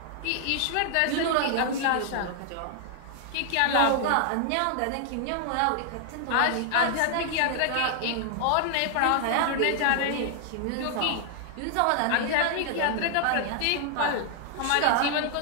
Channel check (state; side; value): different; both; correlation 0.00